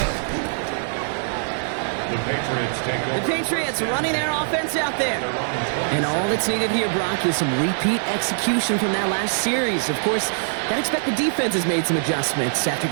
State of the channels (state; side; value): silent; left; digital silence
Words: The Patriots take over. The Patriots running their offense out there. And all that's needed here, Brock, is some repeat execution from that last series. Of course, I expect the defense has made some adjustments after